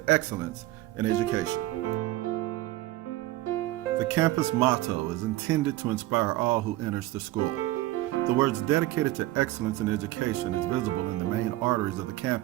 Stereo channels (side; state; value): left; quieter; 17.1 dB